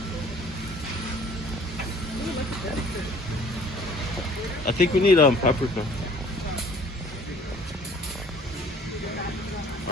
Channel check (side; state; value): both; normal; correlation 0.54